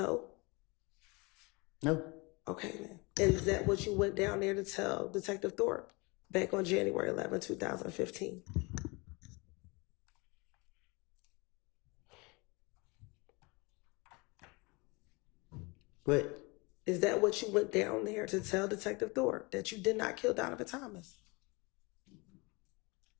No. Okay, then. And is that what you went down there to tell Detective Thorpe back on January 11, 2015? What? Is that what you went down there to tell Detective Thorpe, that you did not kill Donovan Thomas?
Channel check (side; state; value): right; quieter; 27.2 dB